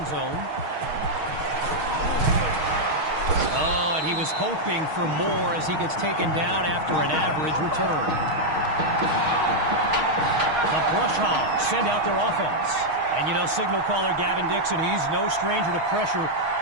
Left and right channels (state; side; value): late; left; 6.4 ms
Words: zone. Oh, and he was hoping for more as he gets taken down after an average return. Brush Hogs send out their offense. And, you know, signal caller Gavin Dixon, he's no stranger to pressure.